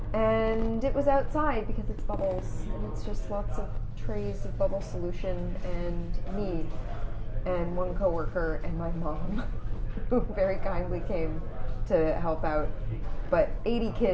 And it was outside because it's bubbles, and it's just lots of trays of bubble solution and me, and one coworker and my mom, who very kindly came to help out. But 80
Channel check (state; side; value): identical; both; correlation 1.00